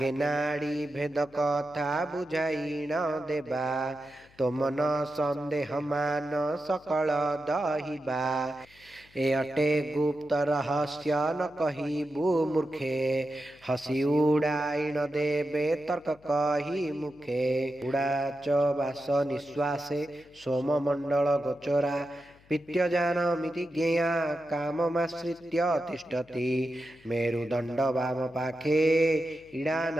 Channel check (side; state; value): left; noise; hum, 28 dB below the sound